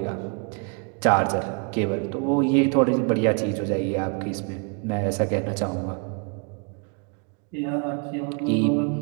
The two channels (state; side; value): quieter; left; 38.0 dB